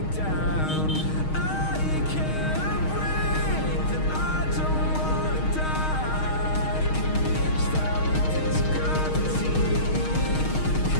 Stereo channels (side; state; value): right; late; 6.4 ms